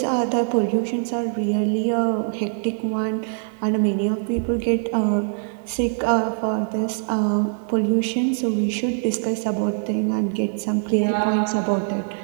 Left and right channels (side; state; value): left; silent; 62 dB below the other